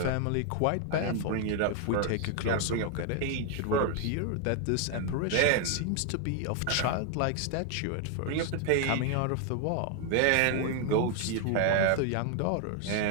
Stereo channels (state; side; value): different; both; correlation 0.00